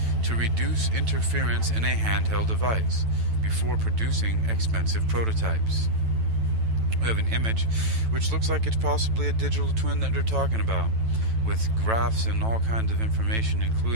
to reduce interference in a handheld device before producing expensive prototypes. We have an image which looks like it's possibly a digital twin that they're talking about, with graphs and all kinds of information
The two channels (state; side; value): late; left; 9.1 ms